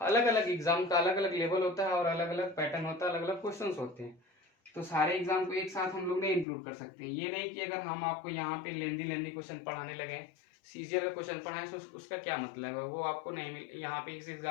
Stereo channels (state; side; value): drops out; right; at 6.5 s